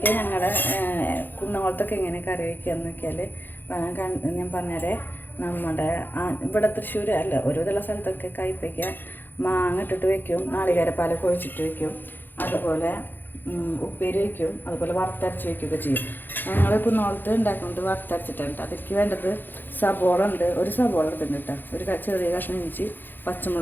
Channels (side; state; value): right; late; 0.092 ms